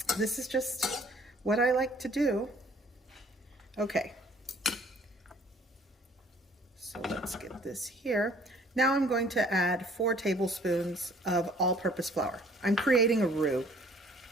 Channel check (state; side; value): normal; both; correlation 0.56